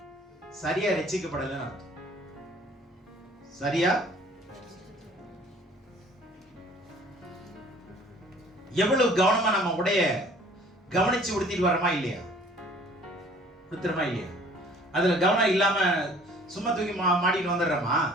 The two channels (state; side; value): normal; both; correlation 0.53